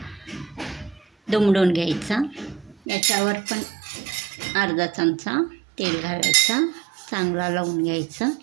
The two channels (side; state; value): left; drops out; at 2.8 s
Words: दुमडून घ्यायचा. याच्यावर पण अर्धा चमचा तेल घालायचा, चांगला लावून घ्यायचा,